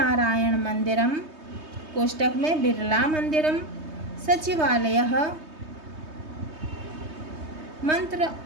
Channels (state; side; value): late; left; 3.2 ms